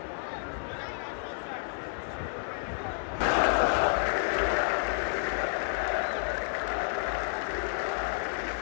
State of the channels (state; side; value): silent; right; 57 dB below the other